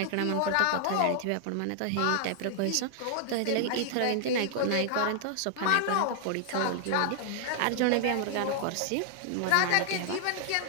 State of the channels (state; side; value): different; both; correlation -0.01